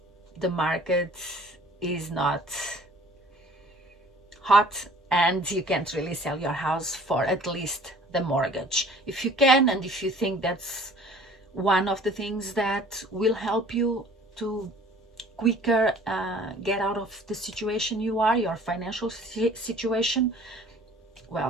the market is not hot and you can't really sell your house for at least the mortgage. If you can, and if you think that's one of the things that will help you to quicker get out of the situation you are, your financial situation,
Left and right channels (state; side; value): normal; both; correlation 0.51